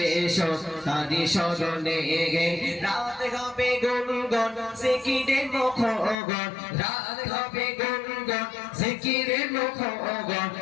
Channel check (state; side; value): drops out; right; at 6.2 s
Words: হোক তারি স্মরণে রাত হবে গুনগুন জিকিরে মুখগণ রাত হবে গুনগুন জিকিরে মুখগণ